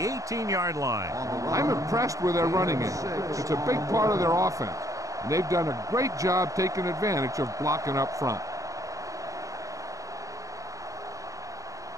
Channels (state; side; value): late; left; 0.16 ms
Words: line. I'm impressed with their running game. It's a big part of their offense. And they've done a great job taking advantage of blocking up front.